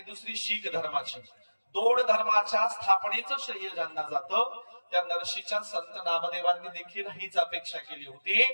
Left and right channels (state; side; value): inverted; both; correlation -1.00